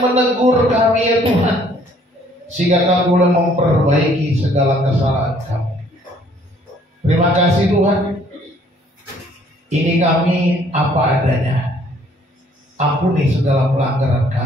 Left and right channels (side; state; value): both; normal; correlation 0.61